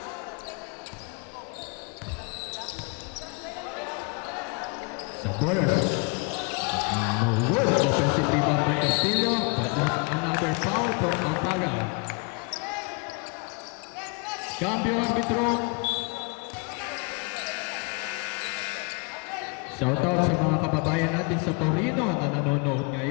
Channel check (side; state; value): right; quieter; 33.8 dB